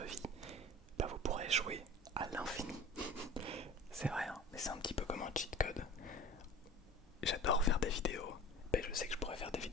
vie, bah vous pourrez jouer à l'infini. C'est vrai, hein, mais c'est un petit peu comme un cheat code. J'adore faire des vidéos, mais je sais que je pourrais faire des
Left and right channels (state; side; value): normal; both; correlation 0.40